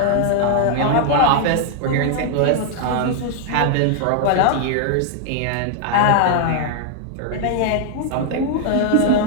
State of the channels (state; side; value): different; both; correlation 0.00